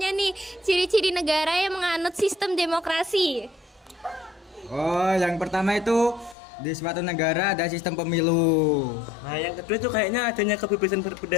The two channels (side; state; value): right; drops out; at 6.4 s